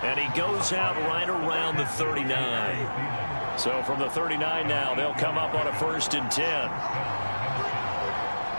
And he goes out right around the 39. So from the 39 now, they'll come up on a 1st and 10.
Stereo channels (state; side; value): inverted; both; correlation -1.00